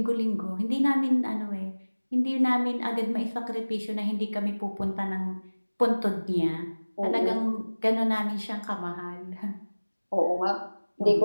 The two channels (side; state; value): both; inverted; correlation -1.00